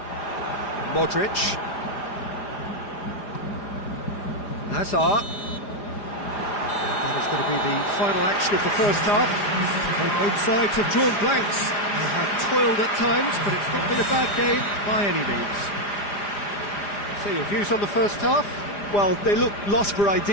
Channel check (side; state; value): right; late; 4.9 ms